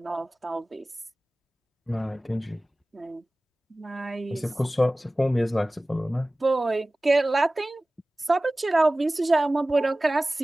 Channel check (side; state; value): both; normal; correlation 0.97